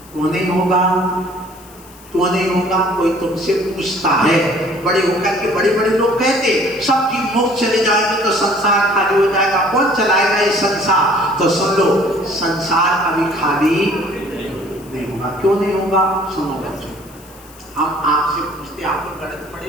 क्यों नहीं होगा? क्यों नहीं होगा? कोई तुमसे पूछता है, बड़े होकर के बड़े बड़े लोग कहते सब जीव मोक्ष चले जाएंगे तो संसार खाली हो जाएगा, कौन चलाएगा ये संसार? तो सुन लो, संसार कभी खाली नहीं होगा। क्यों नहीं होगा? सुनो बच्चों, हम आपसे पूछते, आप लोग गणित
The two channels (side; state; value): left; noise; hiss, 23 dB below the sound